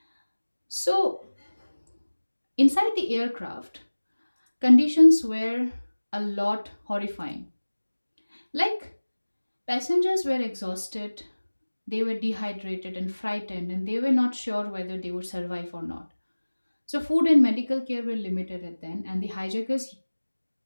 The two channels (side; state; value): both; inverted; correlation -1.00